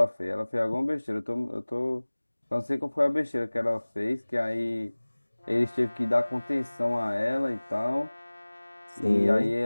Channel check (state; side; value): inverted; both; correlation -1.00